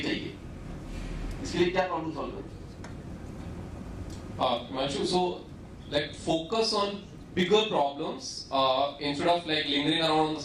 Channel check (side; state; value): both; identical; correlation 1.00